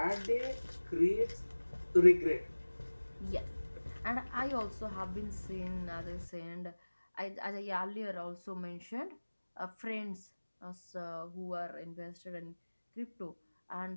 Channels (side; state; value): both; inverted; correlation -1.00